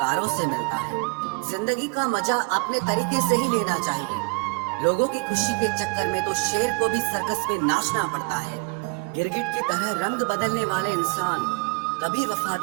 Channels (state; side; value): quieter; left; 31.5 dB